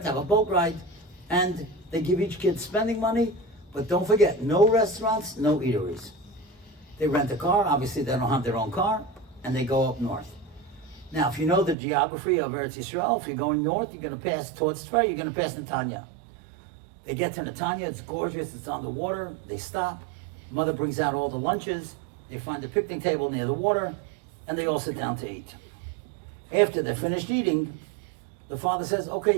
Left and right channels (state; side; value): drops out; left; at 11.8 s